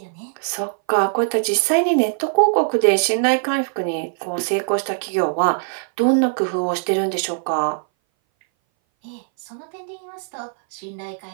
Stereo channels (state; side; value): silent; left; 60 dB below the other